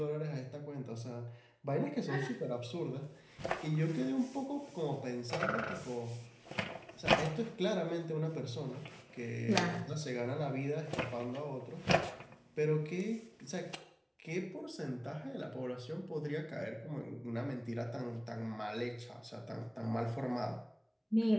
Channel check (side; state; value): both; identical; correlation 1.00